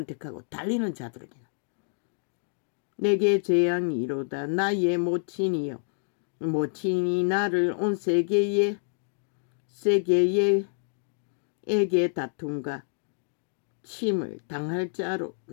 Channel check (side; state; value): right; silent; digital silence